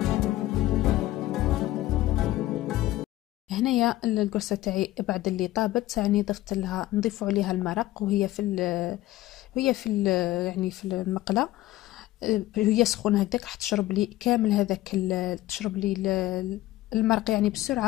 هنايا القرصه تاعي بعد اللي طابت يعني ضفت لها، نضيف عليها المرق وهي في يعني في المقله، هي سخونه هكذاك راح تشرب لي كامل هذاك تشرب لي المرق يعني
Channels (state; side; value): quieter; right; 16.1 dB